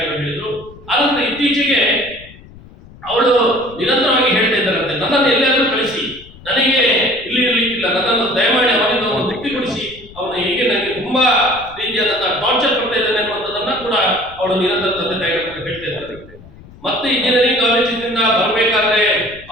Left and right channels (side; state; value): left; noise; rumble, 21 dB below the sound